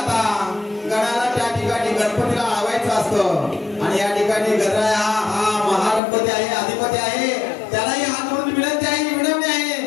गणाला त्या ठिकाणी गणपतीला आवायचं असतं आणि या ठिकाणी गणराय हा महागणपती आहे, अधिपती आहे. त्यालाही हात जोडून विनंती आहे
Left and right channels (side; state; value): right; drops out; at 6.0 s